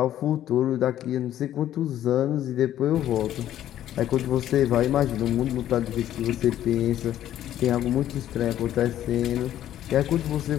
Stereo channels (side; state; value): right; quieter; 12.0 dB